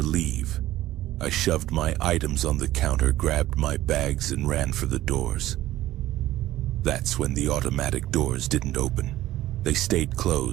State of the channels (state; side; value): quieter; left; 15.0 dB